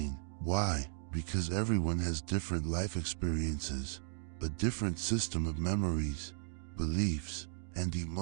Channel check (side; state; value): left; silent; digital silence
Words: Why? Because everyone has different life experiences, a different system of memories, beliefs, and